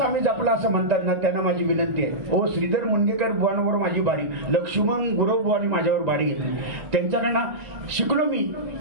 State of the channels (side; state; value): left; late; 1.9 ms